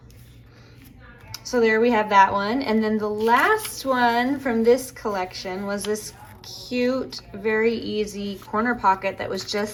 So there we have that one. And then the last one from this collection was this cute, very easy corner pocket that was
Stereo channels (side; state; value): both; identical; correlation 1.00